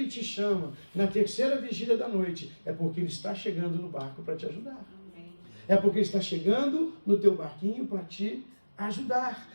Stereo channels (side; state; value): both; inverted; correlation -1.00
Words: te chama na terceira vigília da noite, é porque Ele está chegando no barco para te ajudar. É porque Ele está chegando no teu barquinho para te ajudar.